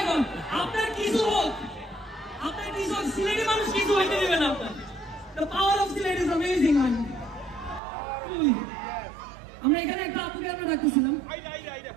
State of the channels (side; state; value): left; drops out; at 7.8 s